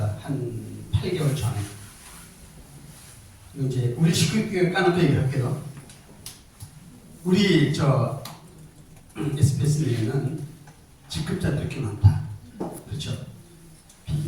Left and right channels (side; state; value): both; identical; correlation 1.00